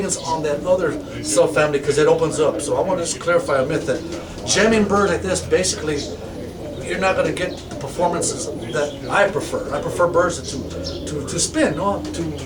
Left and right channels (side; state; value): both; identical; correlation 1.00